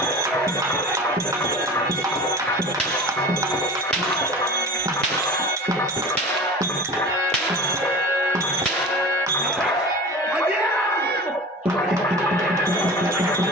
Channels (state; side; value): normal; both; correlation 0.36